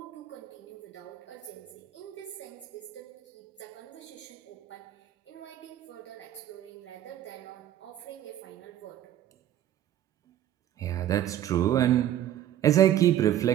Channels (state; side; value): quieter; left; 11.9 dB